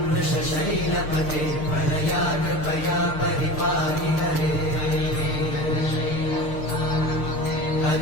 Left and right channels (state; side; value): late; right; 6.6 ms